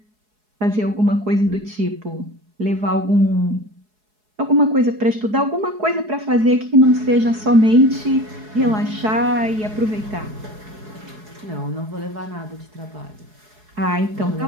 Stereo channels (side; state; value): left; late; 4.7 ms